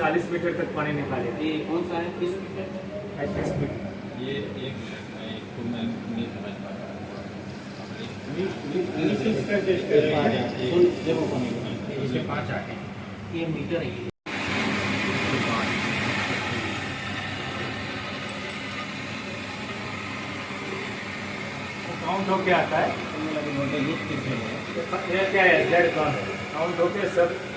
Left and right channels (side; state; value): both; identical; correlation 1.00